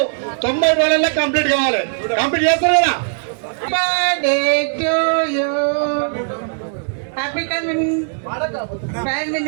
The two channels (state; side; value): silent; left; digital silence